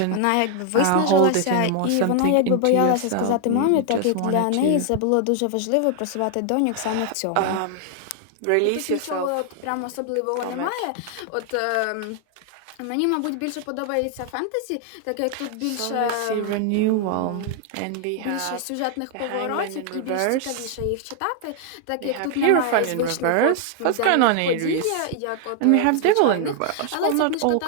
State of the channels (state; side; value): different; both; correlation 0.00